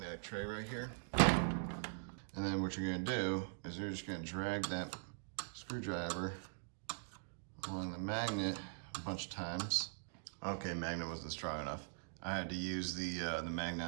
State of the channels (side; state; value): left; silent; digital silence